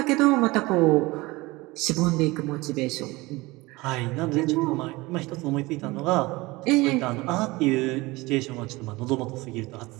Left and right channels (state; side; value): quieter; left; 21.9 dB